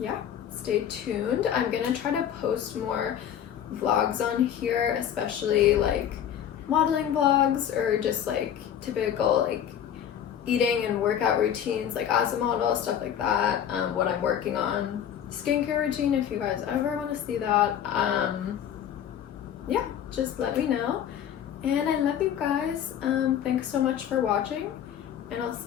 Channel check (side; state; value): right; quieter; 9.5 dB